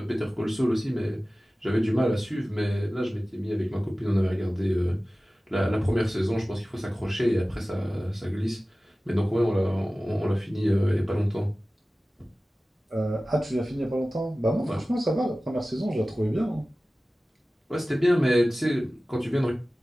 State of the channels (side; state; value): both; normal; correlation 0.97